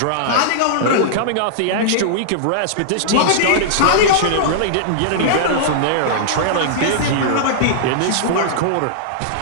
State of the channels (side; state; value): both; different; correlation -0.02